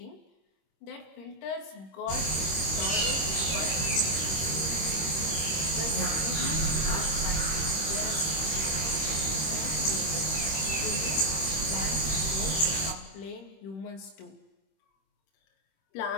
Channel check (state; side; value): late; right; 26 ms